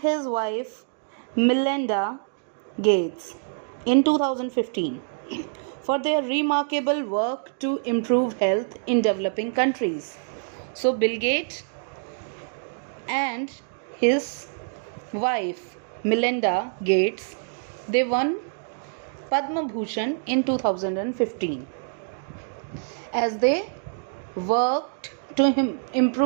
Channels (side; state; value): left; silent; digital silence